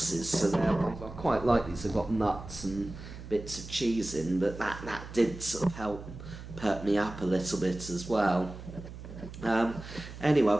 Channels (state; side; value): noise; right; hum, 12 dB below the sound